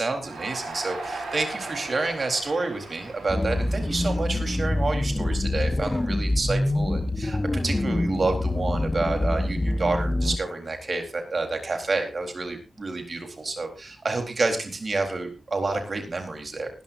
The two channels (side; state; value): both; normal; correlation 0.94